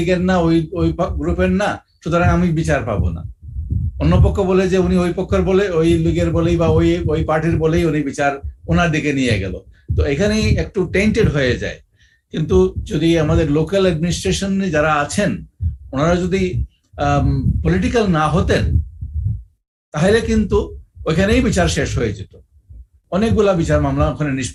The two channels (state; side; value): identical; both; correlation 1.00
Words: না, ওই গ্রুপের না, সুতরাং আমি বিচার পাবো না। অন্য পক্ষ বলে যে উনি ওই পক্ষের বলে, ওই লীগের বলেই বা ওই পার্টির বলেই উনি বিচার ওনার দিকে নিয়ে গেল। তো এখানেই একটু টেন্টেড হয়ে যায়। কিন্তু যদি আমাদের লোকাল অ্যাডমিনিস্ট্রেশন যারা আছেন, ওনারা যদি পলিটিক্যাল না হতেন, তাহলে কিন্তু ওইখানেই বিচার শেষ হয়ে যেত, অনেকগুলা বিচার মামলা ওখানে